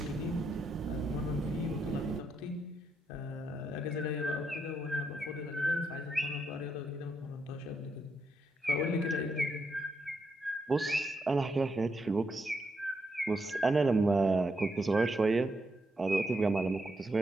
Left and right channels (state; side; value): normal; both; correlation 0.80